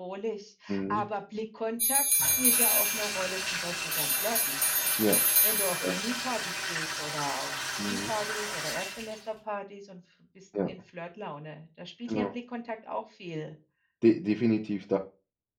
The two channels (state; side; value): identical; both; correlation 1.00